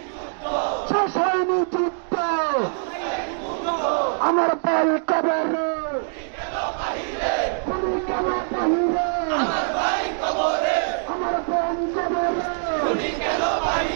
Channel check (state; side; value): silent; left; digital silence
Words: শেষ হয়নি যুদ্ধ, আমার ভাই কবরে, খুনি কেন বাহিরে, আমার ভাই কবরে, আমার বোন কবরে, খুনি কেন